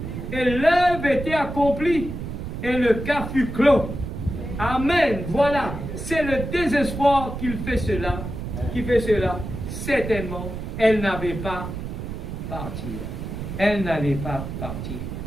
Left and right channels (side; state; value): right; noise; rumble, 7 dB below the sound